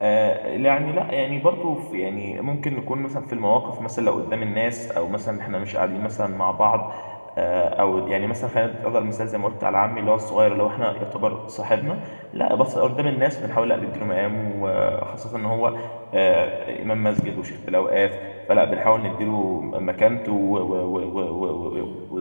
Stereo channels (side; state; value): both; inverted; correlation -1.00